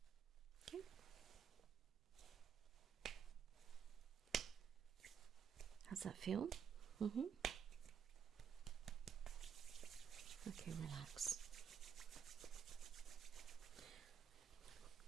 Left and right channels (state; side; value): quieter; left; 7.4 dB